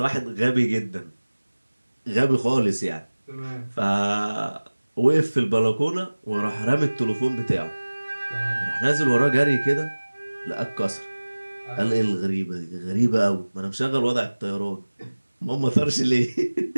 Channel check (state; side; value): inverted; both; correlation -1.00